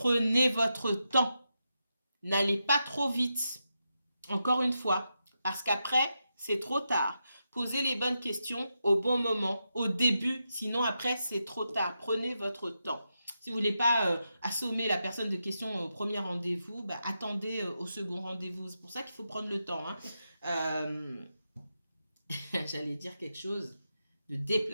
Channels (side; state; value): both; inverted; correlation -0.86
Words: votre temps. N'allez pas trop vite. Encore une fois, parce qu'après, c'est trop tard. Posez les bonnes questions au bon moment, au début, sinon après, c'est trop tard. Prenez votre temps. Si vous voulez pas assommer la personne de questions au premier rendez-vous, bah, attendez au second rendez-vous. C'est pour ça qu'il faut prendre le temps. Hein. J'allais dire quelque chose de